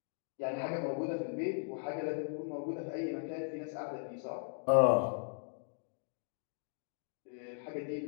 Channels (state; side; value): silent; right; digital silence